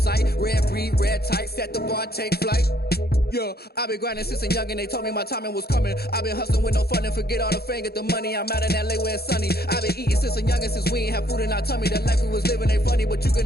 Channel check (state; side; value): late; right; 0.46 ms